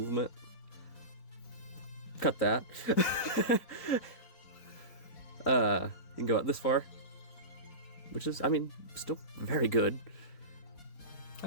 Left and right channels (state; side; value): late; right; 3.9 ms